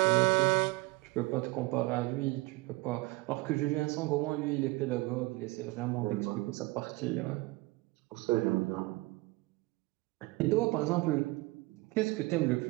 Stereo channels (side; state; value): left; quieter; 22.7 dB